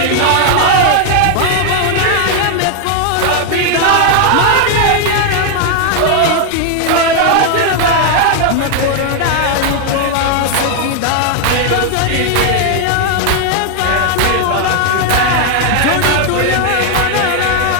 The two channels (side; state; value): both; different; correlation 0.00